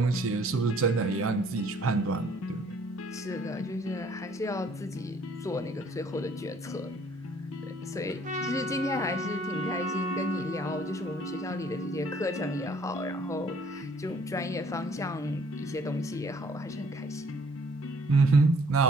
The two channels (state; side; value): normal; both; correlation 0.59